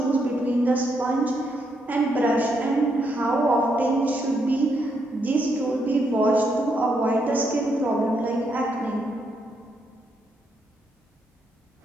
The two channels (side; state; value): both; normal; correlation 0.78